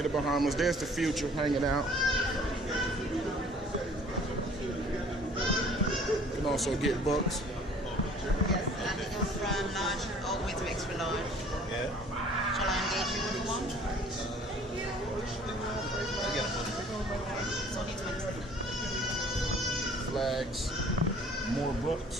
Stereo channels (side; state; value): both; normal; correlation 0.53